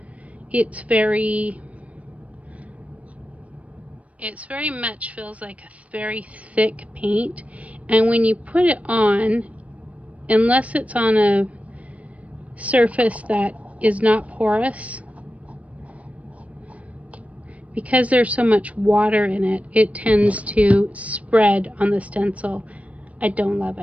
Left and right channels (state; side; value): late; left; 0.066 ms